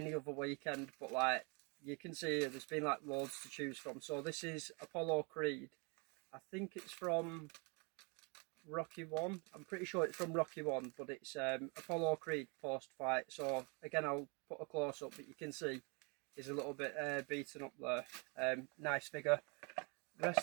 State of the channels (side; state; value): left; quieter; 32.5 dB